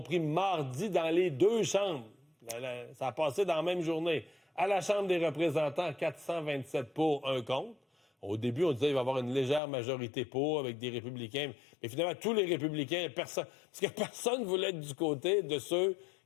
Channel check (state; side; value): drops out; right; at 9.6 s